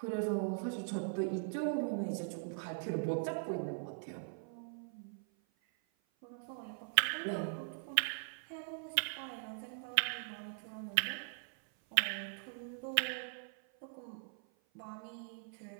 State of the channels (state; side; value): silent; left; 51 dB below the other